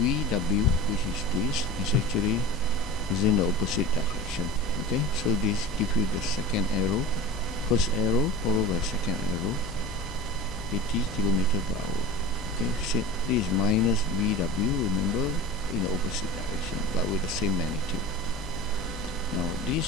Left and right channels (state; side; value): normal; both; correlation 0.35